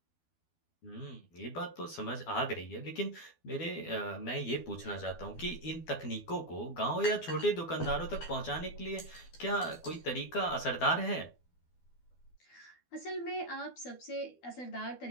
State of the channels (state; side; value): late; right; 12 ms